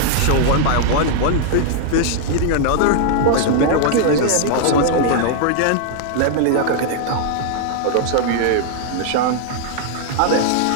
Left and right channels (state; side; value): different; both; correlation -0.01